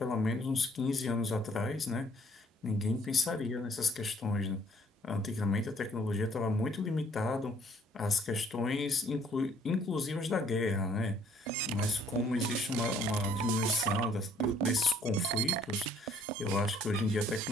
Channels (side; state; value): both; normal; correlation 0.61